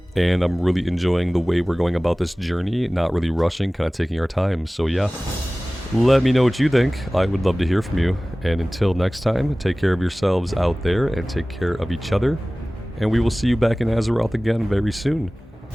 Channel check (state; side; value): normal; both; correlation 0.98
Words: And I'm really enjoying the way we're going about this journey, not really rushing, kind of taking our time. So yeah, let me know what you think. I would love to hear from you. And until next time, take care of yourselves out there and take care of each other. And we will see you back in Azeroth again very soon.